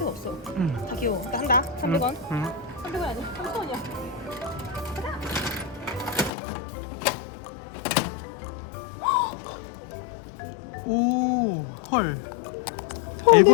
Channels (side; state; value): right; drops out; at 6.3 s